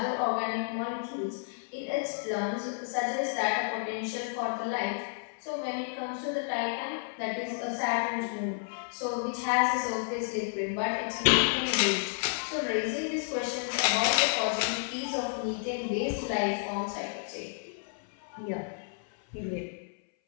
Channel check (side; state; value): right; silent; 57 dB below the other